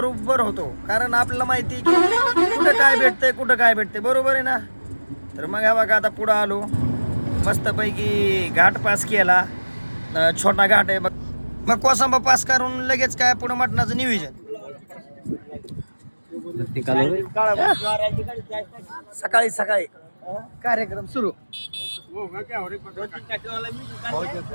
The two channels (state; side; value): inverted; both; correlation -1.00